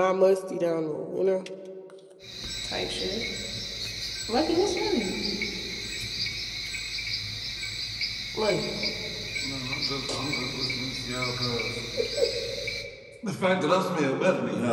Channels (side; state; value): both; identical; correlation 1.00